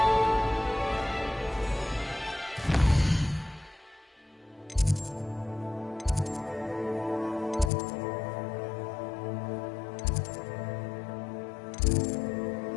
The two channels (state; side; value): drops out; right; at 7.7 s